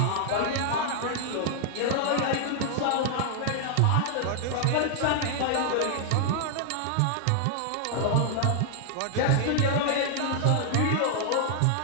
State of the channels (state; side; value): different; both; correlation 0.00